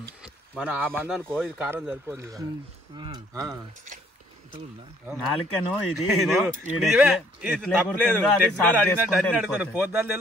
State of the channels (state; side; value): normal; both; correlation 0.63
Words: మనం ఆ మంది అనుకో, ఇది కారం సరిపోతుంది. నాలుకను ఇది పోద్దాలు